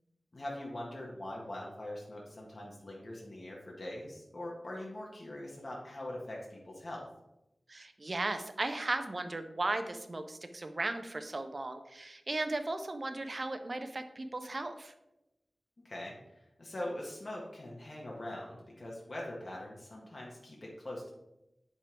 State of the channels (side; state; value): both; normal; correlation 0.97